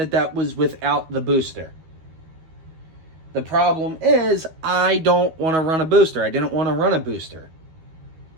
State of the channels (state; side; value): late; left; 13 ms